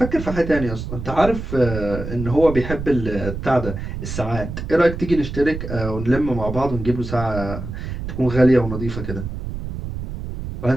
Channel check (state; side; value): noise; right; rumble, 7 dB below the sound